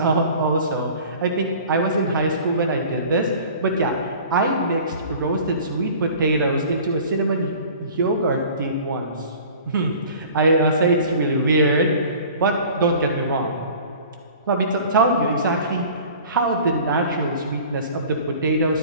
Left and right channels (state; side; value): inverted; both; correlation -0.45